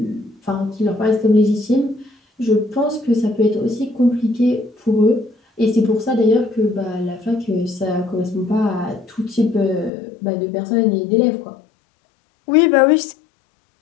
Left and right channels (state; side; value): drops out; right; at 9.9 s